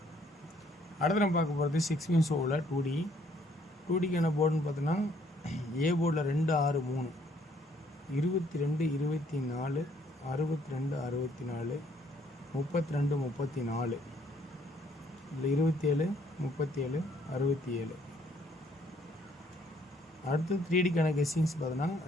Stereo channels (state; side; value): normal; both; correlation 0.65